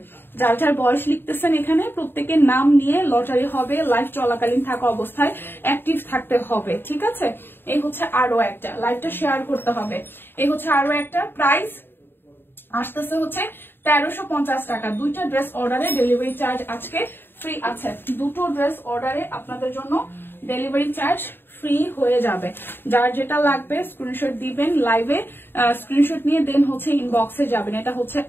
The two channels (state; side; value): late; right; 0.10 ms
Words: যার যার বয়স লিখতেছেন এখানে প্রত্যেকের নাম নিয়ে লটারি হবে। লাইভ চলাকালীন থাকা অবস্থায় অ্যাক্টিভ থাকতে হবে, ঠিক আছে? এই হচ্ছে আরো একটা, লাইভটা শেয়ার করতে হবে। এই হচ্ছে আরো একটা। প্রাইস আসতেছে হচ্ছে 1350 টাকা। দুইটা ড্রেস অর্ডারে ডেলিভারি চার্জ আজকে ফ্রি আছে। দুটো ড্রেস অর্ডারে আপনাদের জন্য ডেলিভারি চার্জ ফ্রি হয়ে যাবে। যার যেটা লাগবে স্ক্রিনশট দিবেন, লাইভে স্ক্রিনশট নিয়ে দেন হচ্ছে ইনবক্সে যাবেন। এটা হচ্ছে